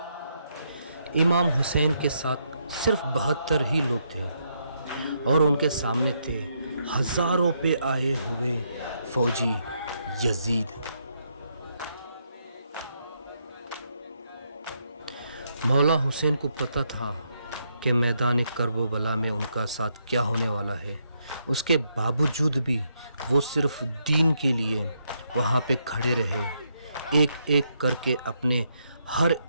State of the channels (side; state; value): both; inverted; correlation -0.77